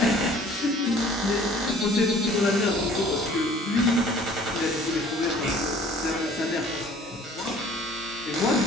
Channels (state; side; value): normal; both; correlation 0.52